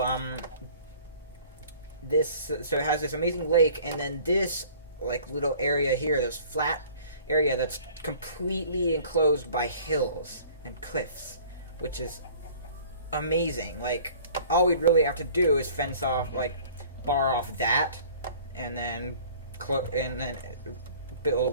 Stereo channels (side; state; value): both; inverted; correlation -0.50